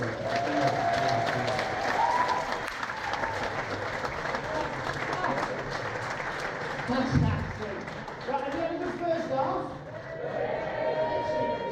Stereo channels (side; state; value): both; identical; correlation 1.00